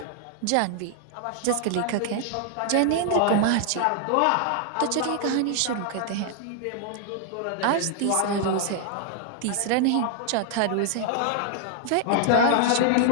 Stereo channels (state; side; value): different; both; correlation 0.00